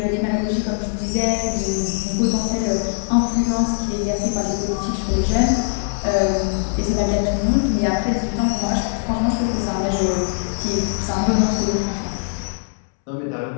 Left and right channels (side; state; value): right; silent; 65 dB below the other